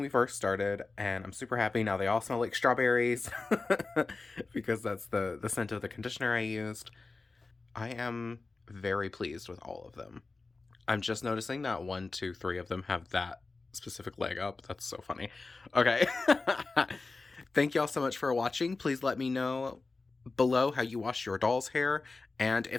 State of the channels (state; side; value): quieter; right; 3.7 dB